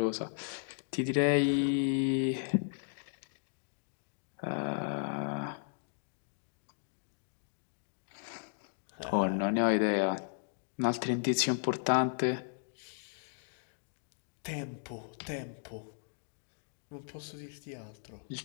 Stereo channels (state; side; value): silent; right; digital silence